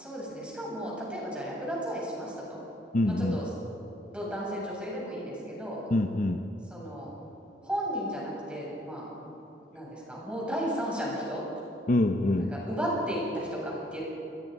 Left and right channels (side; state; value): both; normal; correlation 0.64